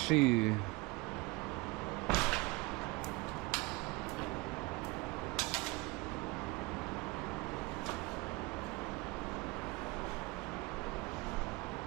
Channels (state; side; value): quieter; left; 24.1 dB